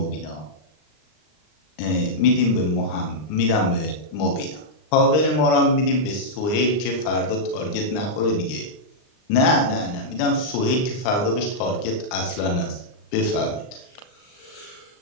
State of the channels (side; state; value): right; late; 39 ms